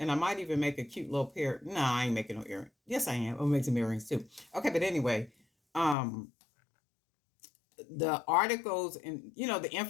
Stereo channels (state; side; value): drops out; right; at 6.0 s